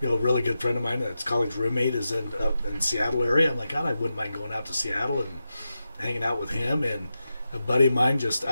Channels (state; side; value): inverted; both; correlation -0.90